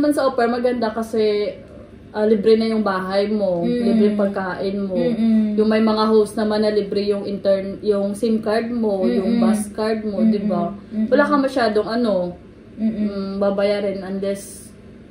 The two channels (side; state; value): both; identical; correlation 1.00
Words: sa au pair, maganda kasi libre na yung bahay mo, libre pagkain mo. Yung may mga host naman na libre yung yung SIM card mo, yung bus card mo, di ba? Wala ka masyadong babayarin unless